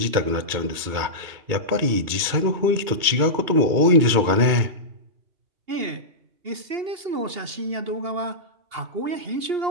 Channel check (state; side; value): late; left; 2.3 ms